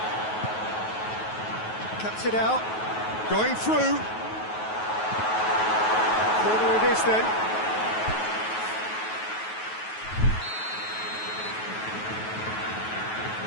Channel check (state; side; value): late; right; 9.3 ms